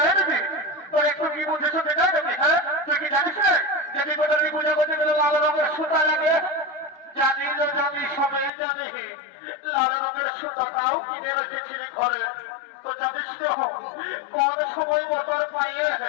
দিদি তোর একটু কি বুঝেছো দেখা দেবি? হ্যাঁ তুই কি জানিস না যদি কোথায় পূজা করতে গেলে লাল রঙের সুতা লাগে? জানি তো জানি, সবাই জানি। লাল রঙের সুতাটাও কিনে রেখেছিলি ঘরে। তো জানিস তো কোন সময় মোটর পাইয়ে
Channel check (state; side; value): drops out; right; at 8.5 s